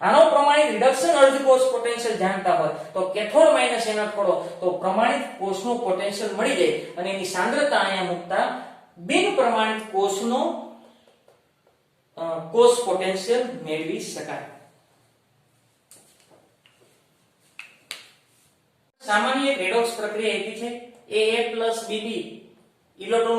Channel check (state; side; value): identical; both; correlation 1.00